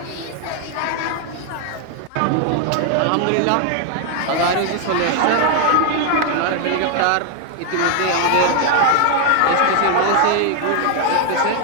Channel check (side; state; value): both; different; correlation 0.00